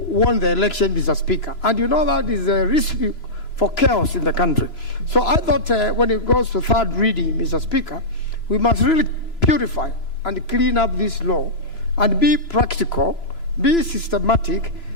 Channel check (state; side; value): late; right; 3.0 ms